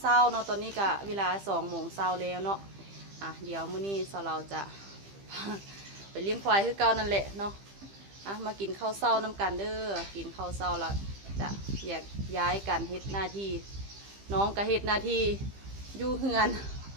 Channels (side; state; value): left; late; 15 ms